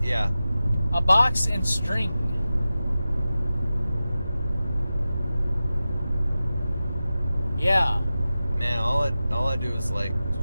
Yeah. A box and string. Yeah. Man, all I do is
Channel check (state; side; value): inverted; both; correlation -0.94